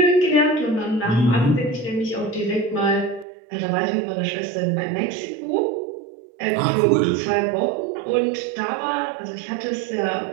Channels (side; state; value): left; drops out; at 3.2 s